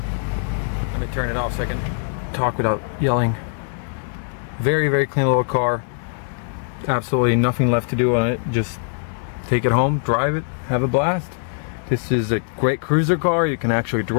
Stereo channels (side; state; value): right; silent; digital silence